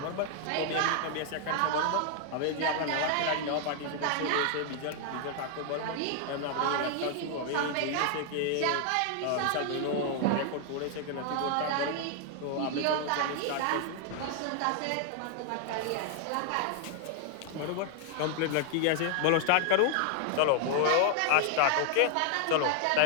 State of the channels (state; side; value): different; both; correlation 0.00